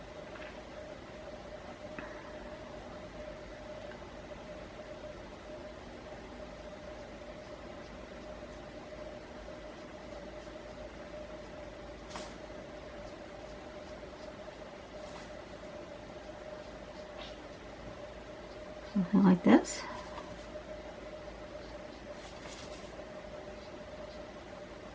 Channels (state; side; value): identical; both; correlation 1.00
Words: something like this.